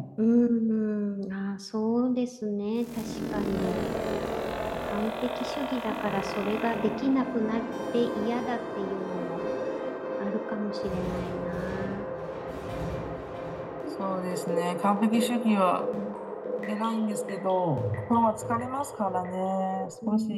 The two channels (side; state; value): both; identical; correlation 1.00